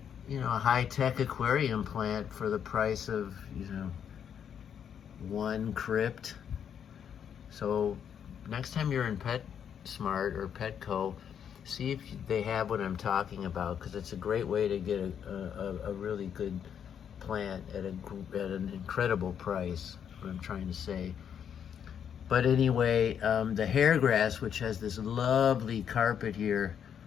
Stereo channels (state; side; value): quieter; right; 8.3 dB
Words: a high-tech aquarium plant for the price of one crypt. So next time you're in PetSmart or Petco, see if they have what I'm talking about, because it's a great way to get a really good plant at an incredible price, what I'm trying to say. But anyway, the hairgrass, which has this lovely carpet here,